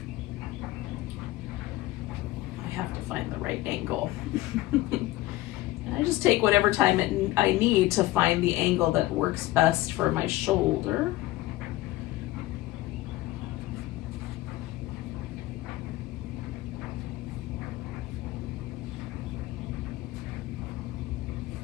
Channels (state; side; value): quieter; right; 17.2 dB